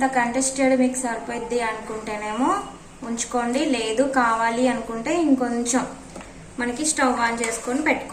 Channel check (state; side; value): identical; both; correlation 1.00